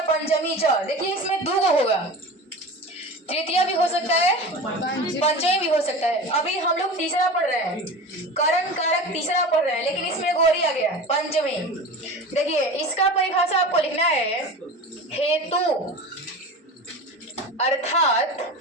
पंचमी च। देखिए इसमें दो गो होगा, तृतीया भी हो सकता है, पंचमी भी हो सकता है। अभी हम लोग तीसरा पढ़ रहे हैं, करण कारक तीसरा पढ़ रहे हैं, लेकिन इसमें गोरी आ गया पंचमी। देखिए इसका परिभाषा आपको लिखना है, हेतु अर्थात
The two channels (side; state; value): both; normal; correlation 0.32